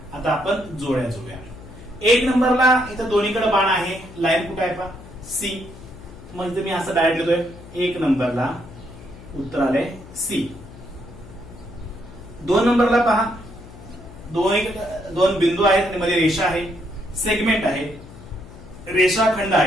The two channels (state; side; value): noise; left; hum, 18 dB below the sound